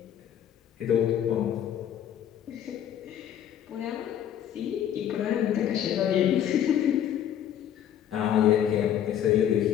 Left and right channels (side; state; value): right; quieter; 10.2 dB